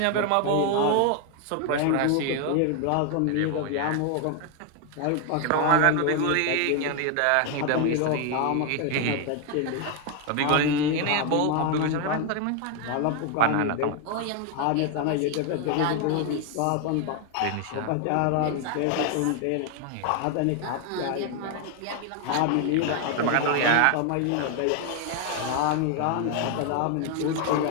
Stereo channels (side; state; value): both; different; correlation 0.01